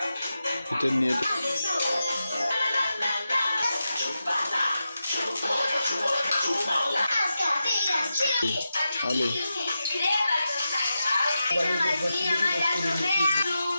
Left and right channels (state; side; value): inverted; both; correlation -0.90